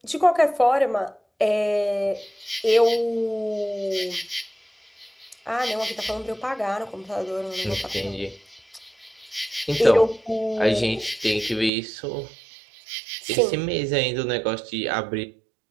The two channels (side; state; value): left; drops out; at 11.7 s